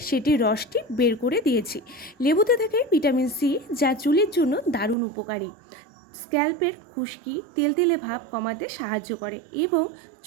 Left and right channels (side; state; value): left; drops out; at 5.0 s